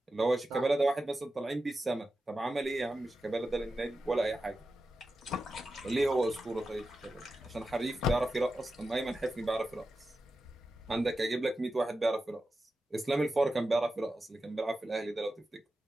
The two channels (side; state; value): both; normal; correlation 0.91